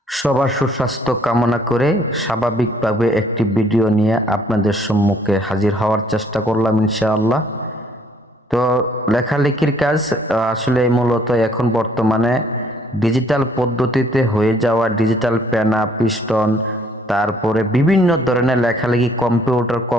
সবার সুস্বাস্থ্য কামনা করে স্বাভাবিকভাবে একটি ভিডিও নিয়ে আপনাদের সম্মুখে হাজির হওয়ার চেষ্টা করলাম ইনশাআল্লাহ। তো লেখালেখির কাজ আসলে মূলত এখন বর্তমানে ডিজিটাল পদ্ধতিতে হয়ে যাওয়া ডিজিটাল পেনা পিস্টন, তারপরে বিভিন্ন ধরনের লেখালেখি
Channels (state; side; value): normal; both; correlation 0.62